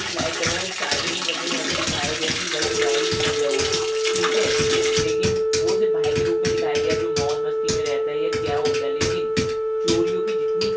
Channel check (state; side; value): identical; both; correlation 1.00